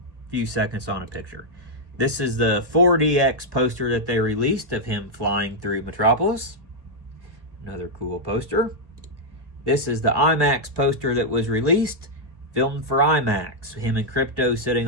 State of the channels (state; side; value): late; left; 1.1 ms